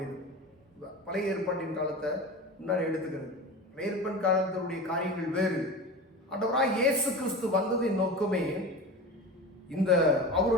பழைய ஏற்பாட்டின் காலத்தை முன்னாடி எடுத்துக்கிறது. பழைய ஏற்பாட்டின் காலத்தினுடைய காரியங்கள் வேறு. ஆண்டவராய் இயேசு கிறிஸ்து வந்ததின் நோக்கமே, இந்த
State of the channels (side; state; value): both; normal; correlation 0.30